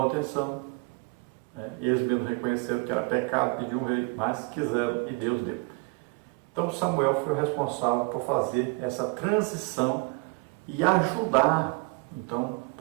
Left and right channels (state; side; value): quieter; left; 29.3 dB